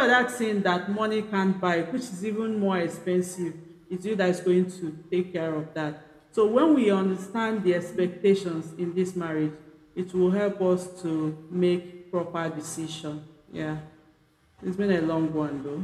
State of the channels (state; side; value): identical; both; correlation 1.00